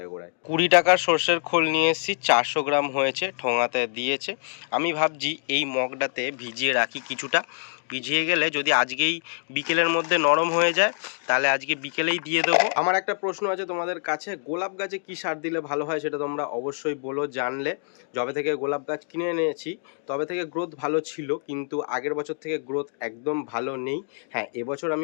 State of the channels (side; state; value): right; silent; 61 dB below the other